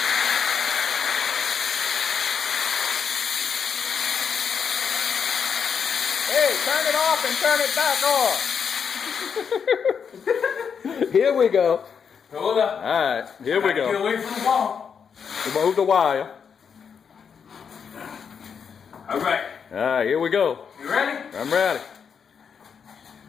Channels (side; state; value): right; quieter; 6.8 dB